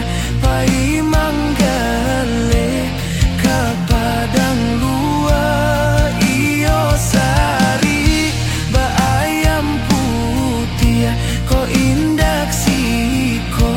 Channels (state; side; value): identical; both; correlation 1.00